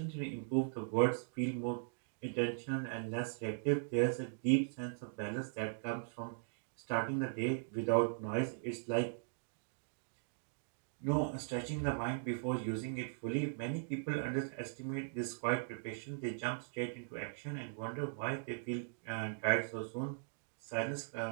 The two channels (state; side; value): silent; left; digital silence